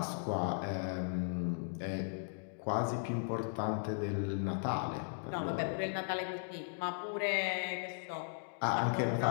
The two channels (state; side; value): silent; right; digital silence